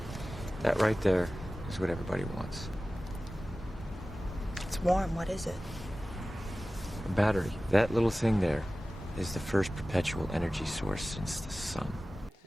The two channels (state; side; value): normal; both; correlation 0.96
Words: That right there is what everybody wants. It's warm. What is it? A battery. That little thing there is the first perpetual energy source since the sun.